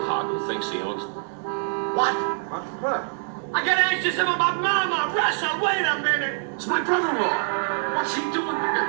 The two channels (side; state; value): left; silent; digital silence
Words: hog who thinks he owns... What? What? I gotta ask you something about Mama. Russell, wait a minute. It's my brother-in-law. What's he doing?